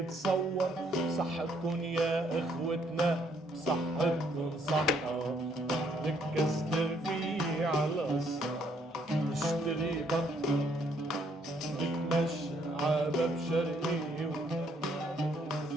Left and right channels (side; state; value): both; normal; correlation 0.69